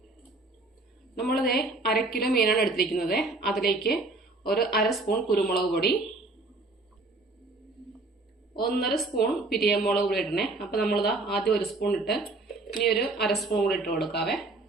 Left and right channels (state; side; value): quieter; left; 3.2 dB